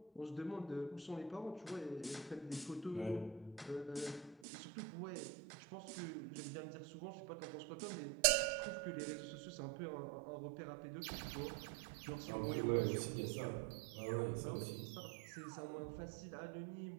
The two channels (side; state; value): left; drops out; at 4.4 s